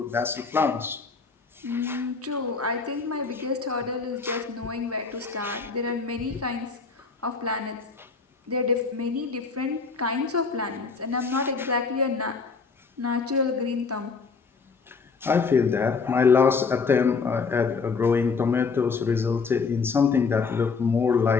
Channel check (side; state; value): right; quieter; 4.9 dB